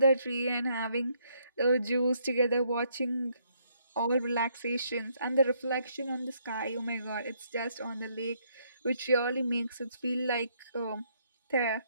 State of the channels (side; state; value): both; inverted; correlation -0.71